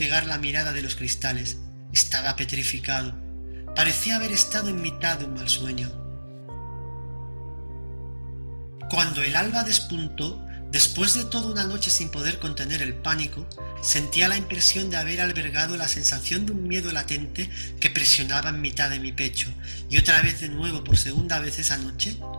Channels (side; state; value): both; inverted; correlation -1.00